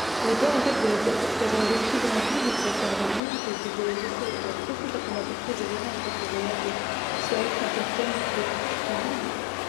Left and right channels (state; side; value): drops out; right; at 3.2 s